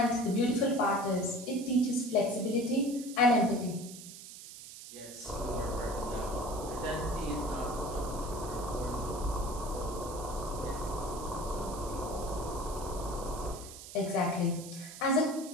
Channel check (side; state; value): right; noise; hiss, 13 dB below the sound